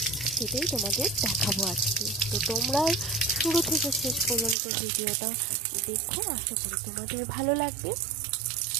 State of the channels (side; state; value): left; drops out; at 4.5 s